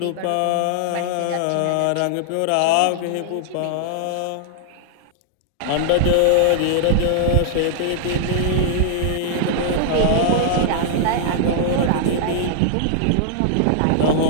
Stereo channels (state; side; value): different; both; correlation -0.01